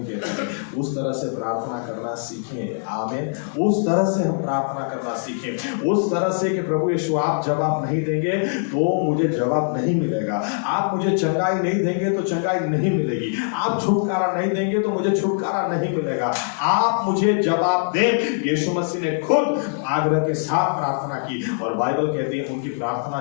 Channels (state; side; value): silent; right; digital silence